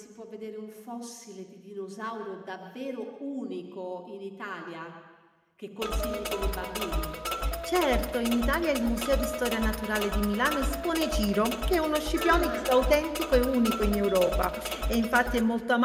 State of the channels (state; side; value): identical; both; correlation 1.00